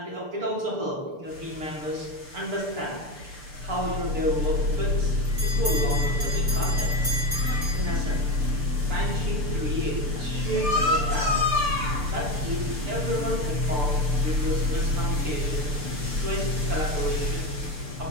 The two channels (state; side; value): late; left; 6.8 ms